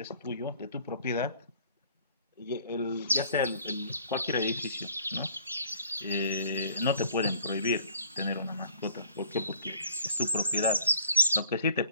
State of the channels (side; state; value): both; inverted; correlation -0.57